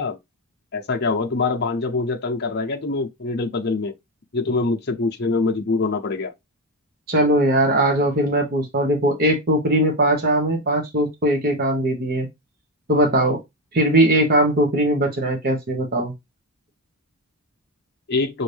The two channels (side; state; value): both; normal; correlation 0.11